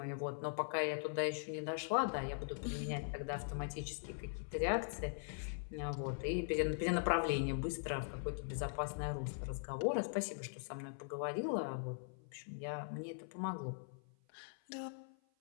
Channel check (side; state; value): right; silent; 50 dB below the other